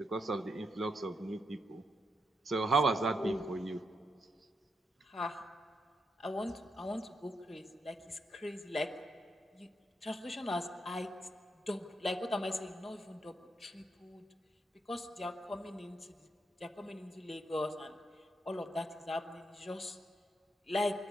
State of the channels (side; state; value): both; normal; correlation 0.82